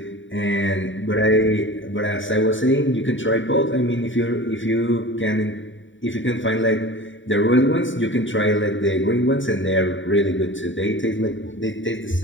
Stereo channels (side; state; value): right; late; 0.55 ms